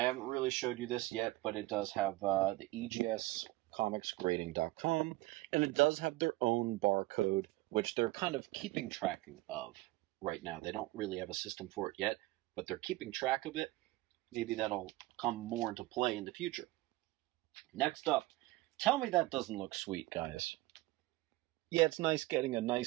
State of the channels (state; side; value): quieter; left; 19.4 dB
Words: haven't really showed you this yet, but it does have the EGS comicsgrading.com, and it does have their own barcode, which they're kind of keeping track of right now. They don't really have a system for it yet, but they're keeping track of it. Maybe that'll come more into play in the future. Next up, tell me that doesn't look sweet, guys. Yeah, it's nice getting a